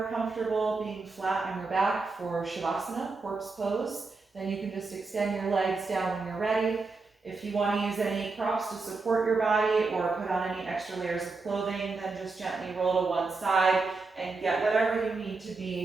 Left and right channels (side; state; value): left; quieter; 4.0 dB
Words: comfortable being flat on your back for Shavasana, Tortoise Pose, then you can just extend your legs down when you're ready. If you want to use any props to support your body or put on any extra layers of clothing, then just gently roll to one side and get whatever you need to